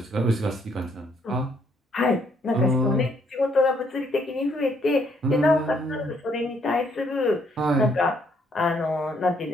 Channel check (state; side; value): normal; both; correlation 0.69